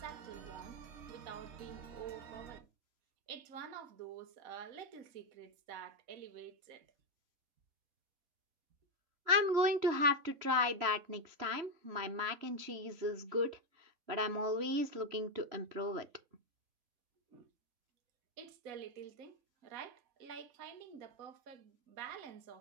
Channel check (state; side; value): late; left; 3.0 ms